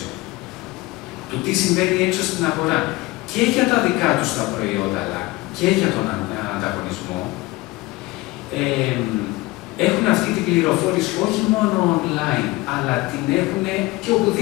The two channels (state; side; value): quieter; right; 20.9 dB